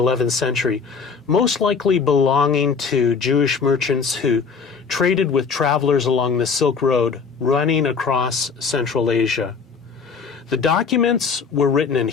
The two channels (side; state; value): right; quieter; 5.4 dB